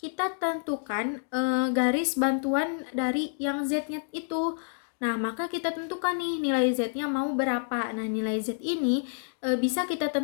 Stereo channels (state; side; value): silent; right; digital silence